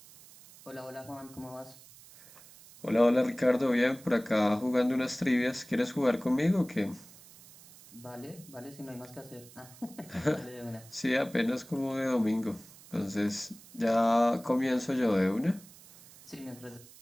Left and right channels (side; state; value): right; noise; hiss, 21 dB below the sound